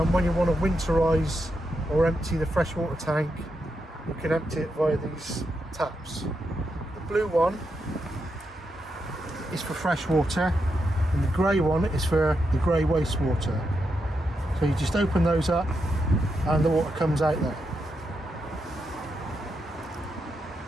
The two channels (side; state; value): both; normal; correlation 0.84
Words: When you want to winterize or empty the freshwater tank, you can empty it via these taps. The blue one is for fresh water, and the grey one is for the grey wastewater. So you just open those up and the water comes out there.